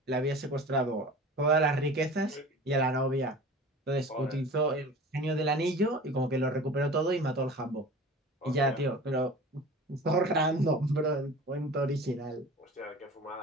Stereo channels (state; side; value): normal; both; correlation 0.39